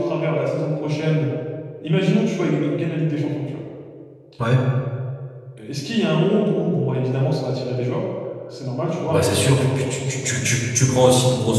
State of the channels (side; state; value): both; identical; correlation 1.00